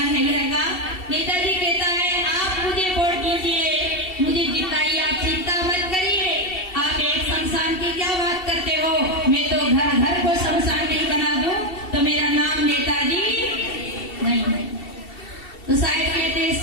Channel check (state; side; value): late; right; 2.7 ms